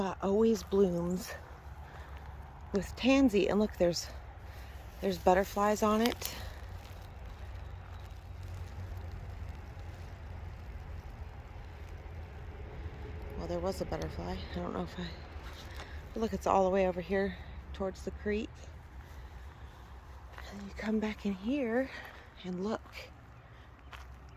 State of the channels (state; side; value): identical; both; correlation 1.00